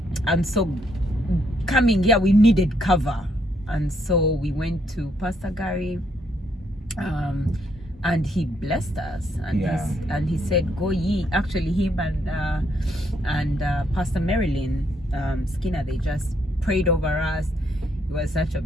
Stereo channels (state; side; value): normal; both; correlation 0.73